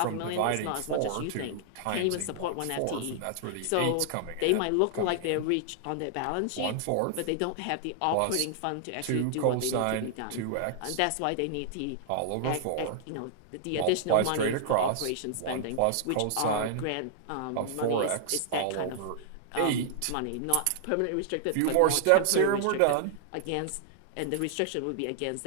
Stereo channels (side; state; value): both; different; correlation -0.01